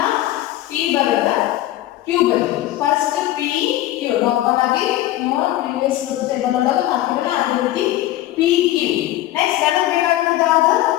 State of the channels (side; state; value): right; quieter; 14.9 dB